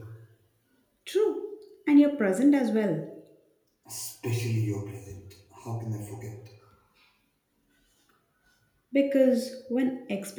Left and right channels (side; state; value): both; identical; correlation 1.00